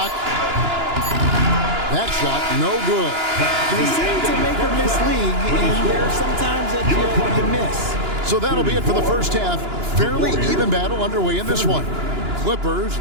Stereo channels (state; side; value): late; left; 2.9 ms